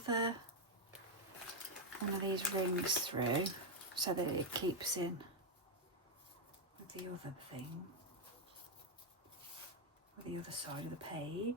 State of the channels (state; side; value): normal; both; correlation 0.02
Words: one of these rings through so that it keeps in with the other thing, with the other side of the